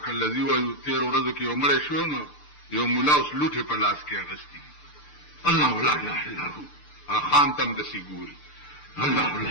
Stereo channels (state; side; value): late; right; 6.7 ms